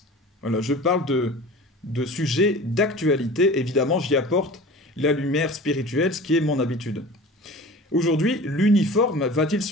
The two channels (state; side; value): normal; both; correlation 0.39